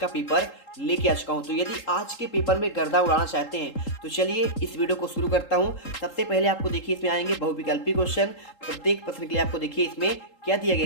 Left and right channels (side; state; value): right; late; 3.8 ms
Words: पेपर लेके आ चुका हूँ। तो यदि आज के पेपर में गर्दा उड़ाना चाहते हैं तो चलिए इस वीडियो को शुरू करता हूँ। सबसे पहले आपको देखिए इसमें आएंगे बहुविकल्पी क्वेश्चन। प्रत्येक प्रश्न के लिए आपको देखिए इसमें क्या दिया